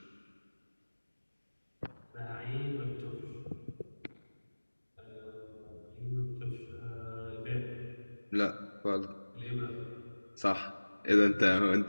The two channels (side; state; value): both; inverted; correlation -1.00